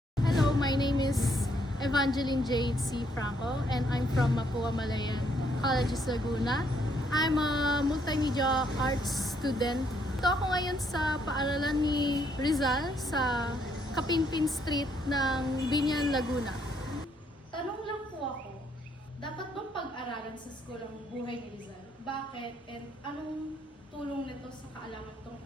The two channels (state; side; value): normal; both; correlation 0.71